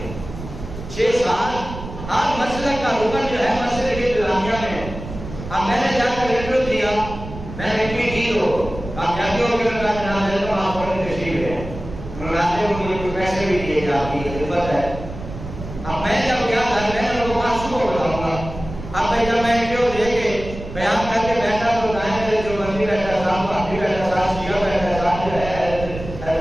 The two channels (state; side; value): noise; right; rumble, 11 dB below the sound